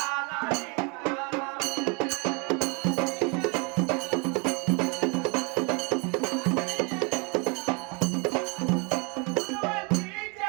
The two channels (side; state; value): left; quieter; 32.4 dB